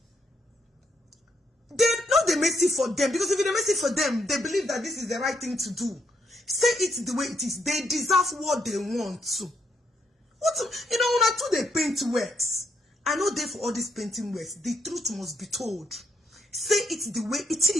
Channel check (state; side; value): normal; both; correlation 0.75